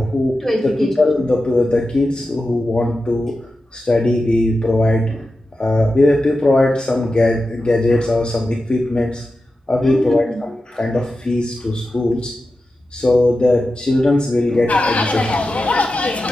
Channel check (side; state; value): both; normal; correlation 0.92